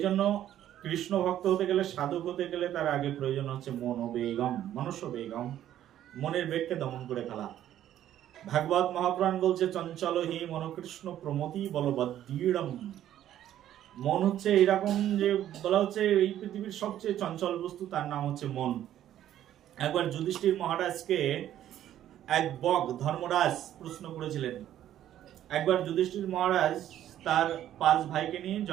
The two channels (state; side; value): quieter; left; 11.8 dB